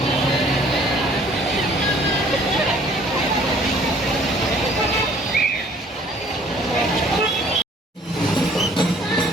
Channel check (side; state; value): both; normal; correlation 0.57